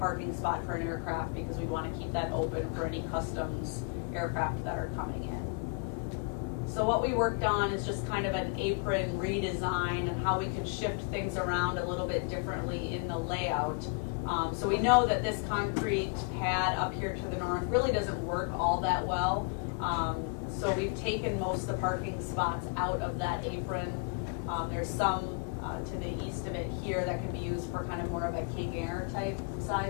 spot for an aircraft because we want to keep that open for any customs aircraft that are coming in. So what we worked on is just kind of an apron redesign and how we could shift things around a little bit differently in the layout. So we know that this concrete pad up here to the north really doesn't work all that well. So we've taken most of the parking spots out of that apron. There's some to the east of it here that can be used for kind of more of a King Air type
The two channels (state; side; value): quieter; right; 36.4 dB